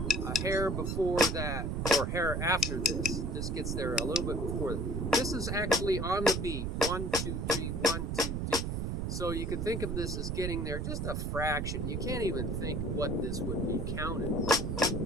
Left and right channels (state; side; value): noise; right; rumble, 1 dB below the sound